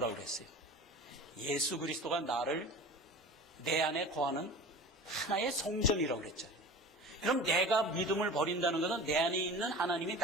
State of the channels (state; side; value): normal; both; correlation 0.36